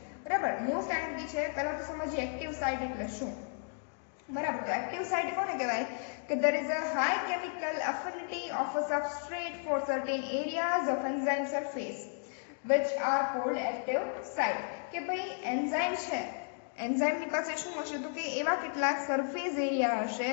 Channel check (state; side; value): silent; right; 55 dB below the other